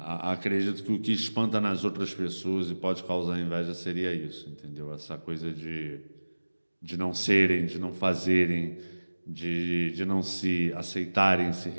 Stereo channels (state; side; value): inverted; both; correlation -1.00